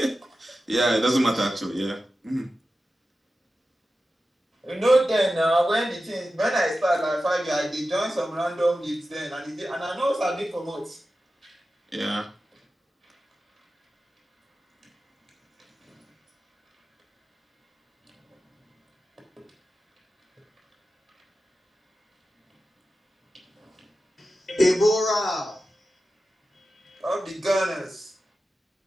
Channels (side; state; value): both; normal; correlation 0.93